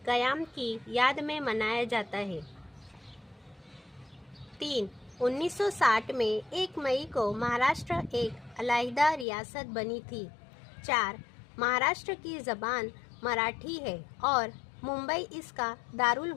क़याम की याद में मनाया जाता है। 3. 1960 में 1 मई को महाराष्ट्र एक अलहदा रियासत बनी थी। 4. महाराष्ट्र की ज़बान मराठी है और मुंबई इसका दारुल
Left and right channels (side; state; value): right; drops out; at 9.2 s